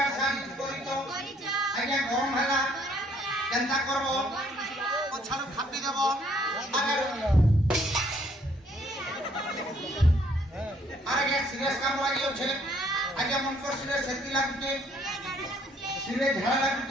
শাড়ি করিছো আজ্ঞা গরম হেলা কেনতা করব পছাড় খাপি দেব আগে সিরিয়াস কাম লাগি আছে আগে মন কর সিরিয়াস সেতি লাগুছে সিরিয়াস ঝাড়া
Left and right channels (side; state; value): both; normal; correlation 0.65